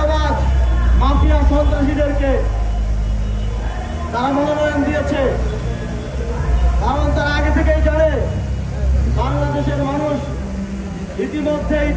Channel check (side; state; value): both; identical; correlation 1.00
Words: মাফিয়া, সন্ত্রাসীদেরকে তারা মনোনয়ন দিয়েছে। কারণ তারা আগে থেকেই জানে বাংলাদেশের মানুষ ইতিমধ্যেই